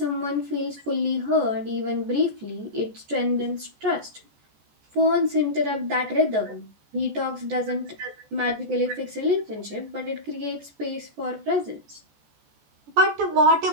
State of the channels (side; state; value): left; late; 14 ms